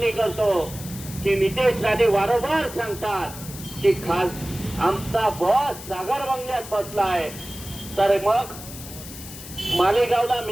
करतो की नितेश राणे वारंवार सांगतात की आमचा बॉस सागर बंगल्यात बसलाय, तर मग मालेगावला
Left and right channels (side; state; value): left; noise; hiss, 13 dB below the sound